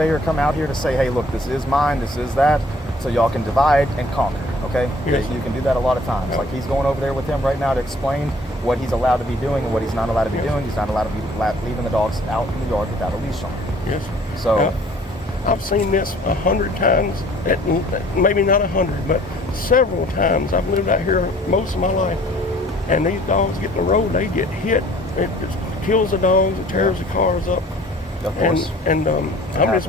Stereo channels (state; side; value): normal; both; correlation 0.54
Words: come out here to say, hey, look, this is mine, this is that, so y'all can divide and conquer. Okay, Yes. You can do that a lot of times. Yeah. Like he's going over there with him right now to explain what he's allowed to be doing and what he's not allowed to be Yes. doing. He's not allowed to be leaving the dogs out in the yard without a leash on. Yes. So. Yeah. I've seen this 100 times, maybe not 100, but several times. I've lived out here most of my life, and these dogs get in the road, they get hit. It just kills the dogs, it tears the cars up. Of course. And I'm just happens.